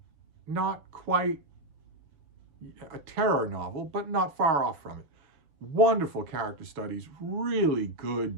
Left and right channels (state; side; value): late; left; 6.1 ms